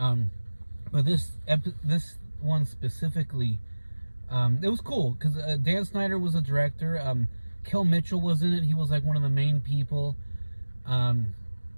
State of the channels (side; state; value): both; inverted; correlation -1.00